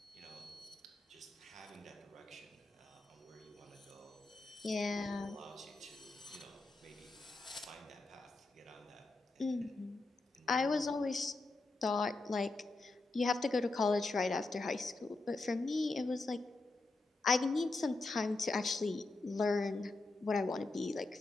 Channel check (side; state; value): right; quieter; 3.2 dB